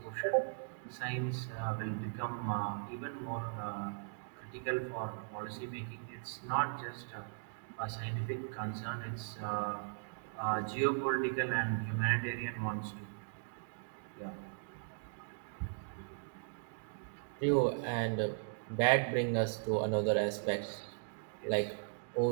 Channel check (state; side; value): silent; left; digital silence